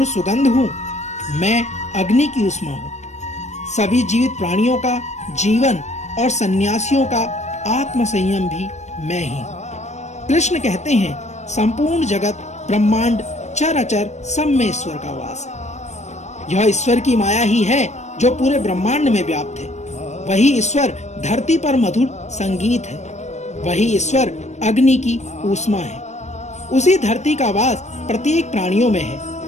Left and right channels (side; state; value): right; late; 0.33 ms